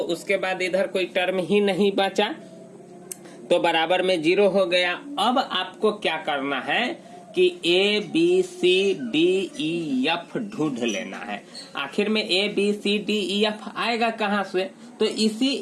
उसके बाद इधर कोई टर्म ही नहीं बचा तो बराबर में 0 हो गया। अब आपको क्या करना है कि ABCDEF ढूंढ लेना है। आखिर में ABCDEF आएगा कहाँ से? तो इसी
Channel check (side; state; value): both; identical; correlation 1.00